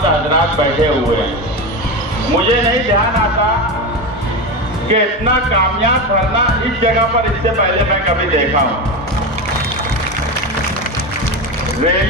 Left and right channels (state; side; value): normal; both; correlation 0.19